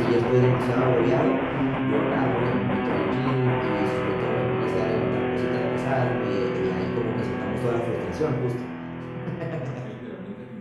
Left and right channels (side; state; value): both; identical; correlation 1.00